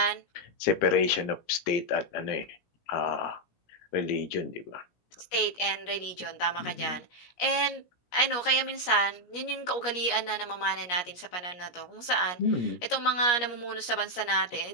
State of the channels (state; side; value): late; right; 17 ms